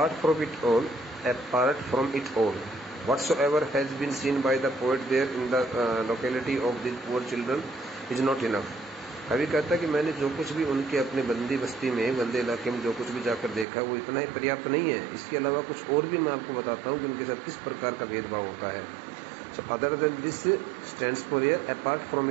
from it all whatsoever has been seen by the poet there in the locality of these poor children is not enough. कवि कहता है कि मैंने जो कुछ भी उनके अपने बंदी बस्ती में, बंदे इलाके में जो कुछ भी जाकर देखा है वो इतना ही पर्याप्त नहीं है, इसके अलावा कुछ और भी मैं आपको बताता हूँ कि उनके साथ किस प्रकार का भेदभाव होता है। So other than this stands for here apart from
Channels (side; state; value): left; drops out; at 13.7 s